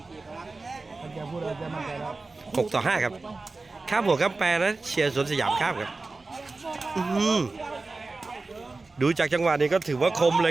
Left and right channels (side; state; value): left; quieter; 3.6 dB